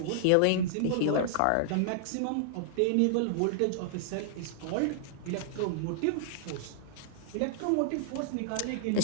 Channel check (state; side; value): different; both; correlation -0.01